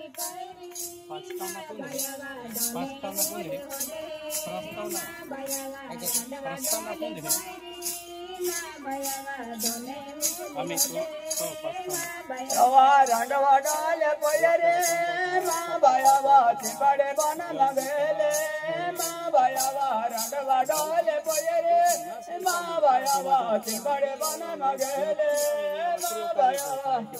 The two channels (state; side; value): identical; both; correlation 1.00